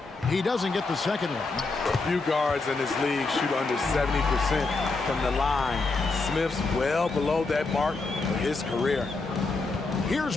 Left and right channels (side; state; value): right; quieter; 3.7 dB